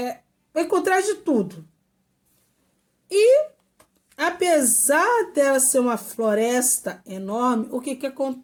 vai encontrar de tudo. E apesar dela ser uma floresta enorme, o que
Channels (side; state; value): both; identical; correlation 1.00